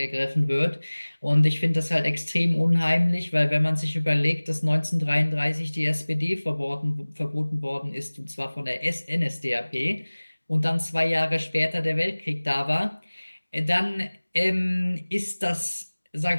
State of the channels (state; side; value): inverted; both; correlation -1.00